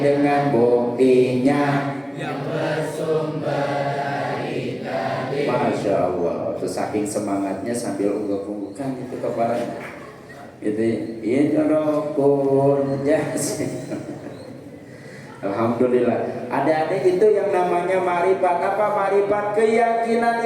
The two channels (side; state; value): both; identical; correlation 1.00